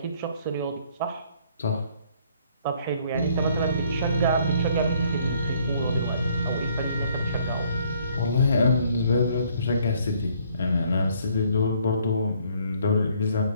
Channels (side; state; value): both; inverted; correlation -0.64